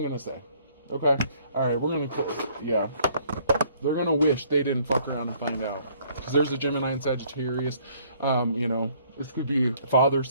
gonna say. Okay? Alright, we're gonna, yeah. They're gonna wish they didn't fuck around and find out. Because there's a Gemini and Sagittarius. You know, this could be father,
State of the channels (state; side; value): inverted; both; correlation -0.62